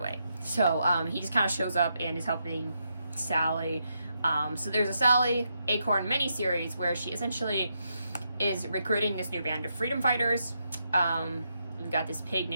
So he just kind of shows up and is helping Sally. So there's a Sally Acorn miniseries where she essentially is recruiting this new band of freedom fighters. We've got this pig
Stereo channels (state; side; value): inverted; both; correlation -0.81